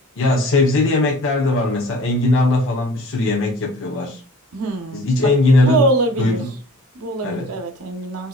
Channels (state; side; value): normal; both; correlation 0.47